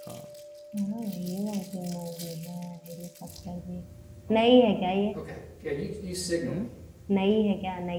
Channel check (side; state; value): both; identical; correlation 1.00